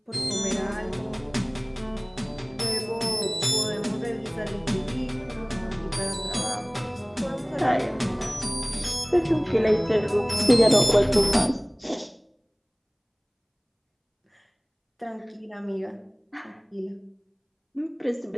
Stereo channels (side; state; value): both; identical; correlation 1.00